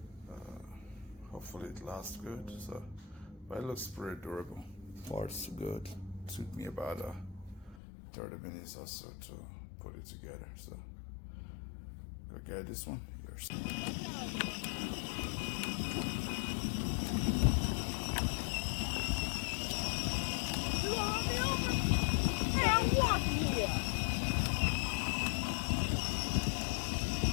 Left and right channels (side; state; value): right; drops out; at 7.8 s